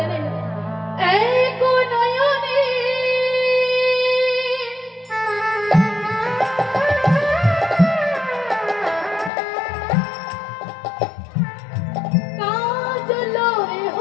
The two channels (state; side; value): drops out; right; at 9.3 s